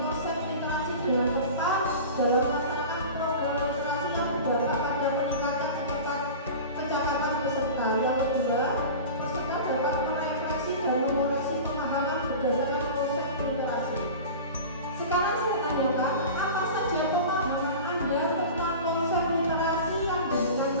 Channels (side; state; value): both; inverted; correlation -0.34